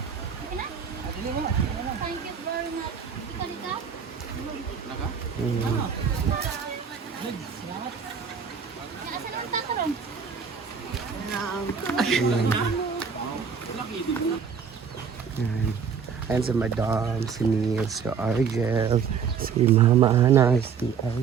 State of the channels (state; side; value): quieter; left; 6.5 dB